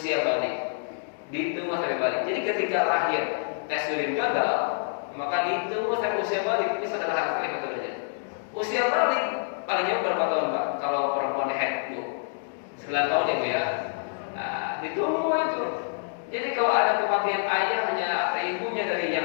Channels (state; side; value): silent; right; digital silence